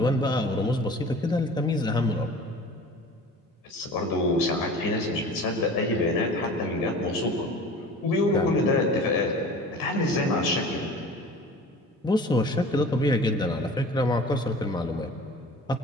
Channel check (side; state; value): both; normal; correlation 0.41